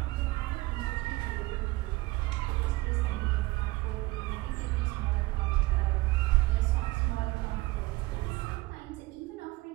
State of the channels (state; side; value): quieter; left; 20.7 dB